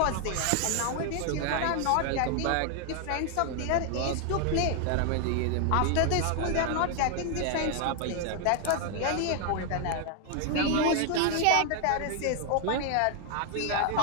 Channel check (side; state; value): both; different; correlation 0.00